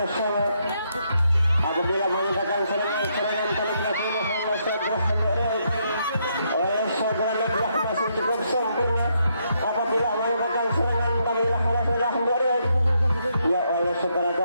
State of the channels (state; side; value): inverted; both; correlation -0.76